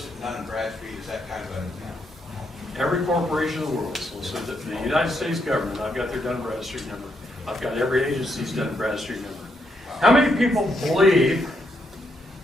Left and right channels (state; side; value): normal; both; correlation 0.78